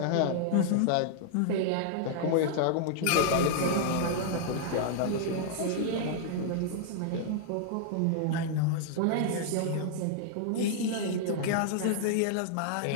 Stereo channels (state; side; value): different; both; correlation -0.01